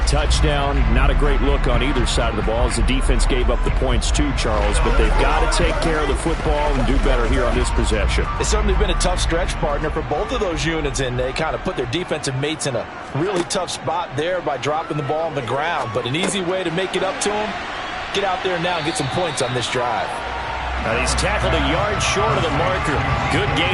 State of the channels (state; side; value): identical; both; correlation 1.00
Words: touchdown. Not a great look on either side of the ball as the defense gave up the points too, Charles. But they've got to take care of the football and do better here on this possession. It's certainly been a tough stretch, partner, for both of those units, and they kind of put their defensive mates in a really tough spot there by dropping the ball on the ground. But an easy way to make it up to them, get out there now and get some points on this drive. And he's tackled a yard short of the marker. Good